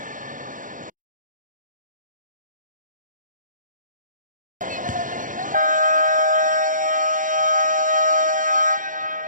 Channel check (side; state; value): left; late; 0.38 ms